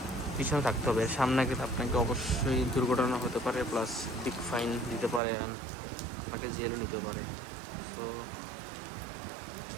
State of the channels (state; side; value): drops out; left; at 5.2 s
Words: পিছনে থাকতে হবে। সামনে গেলে আপনাকে অবশ্যই দুর্ঘটনা হতে পারে, প্লাস বিগ ফাইন দিতে পারে, আপনাকে জেলও নিতে পারে। তো